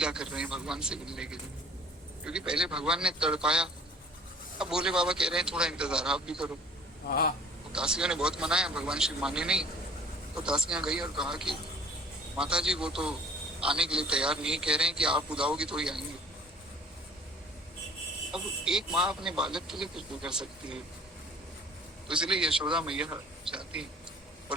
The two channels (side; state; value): both; normal; correlation 0.50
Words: कर रहे हैं भगवान से मिलने के लिए, क्योंकि पहले भगवान ने तड़पाया। अब भोले बाबा कह रहे हैं थोड़ा इंतजार आप भी करो। तो दासियों ने बहुत मनाया, भगवान शिव माने नहीं। तो दासियां गई और कहा कि माता जी वो तो आने के लिए तैयार नहीं, कह रहे हैं कि आप बुलाओगी तो ही आएंगे। अब एक माँ अपने बालक के लिए कुछ भी कर सकती है, तो इसलिए यशोदा मैया जाती है